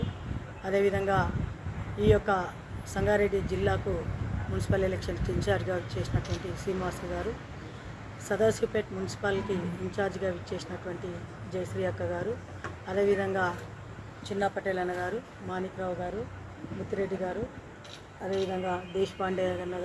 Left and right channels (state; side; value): identical; both; correlation 1.00